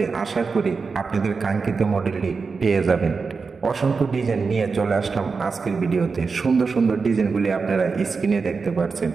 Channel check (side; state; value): left; quieter; 4.8 dB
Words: আশা করি আপনাদের কাঙ্ক্ষিত মডেলটি পেয়ে যাবেন। অসংখ্য ডিজাইন নিয়ে চলে আসলাম আজকের ভিডিওতে। সুন্দর সুন্দর ডিজাইনগুলি আপনারা স্ক্রিনে দেখতে পাচ্ছেন।